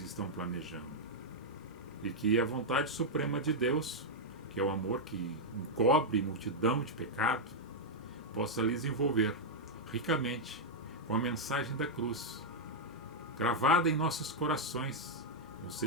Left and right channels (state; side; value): normal; both; correlation -0.03